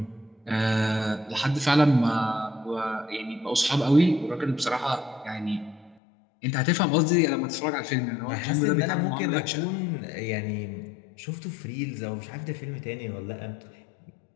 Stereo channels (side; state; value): right; drops out; at 6.0 s